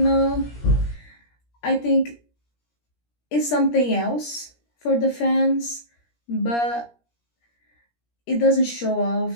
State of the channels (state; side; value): late; right; 17 ms